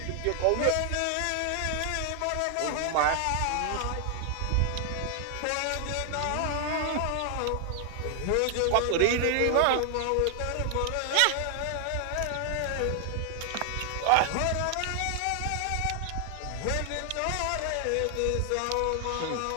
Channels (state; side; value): different; both; correlation 0.00